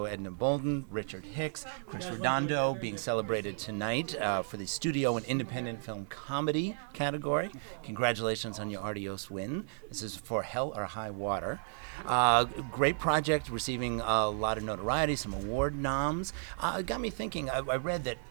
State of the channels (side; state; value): left; silent; 55 dB below the other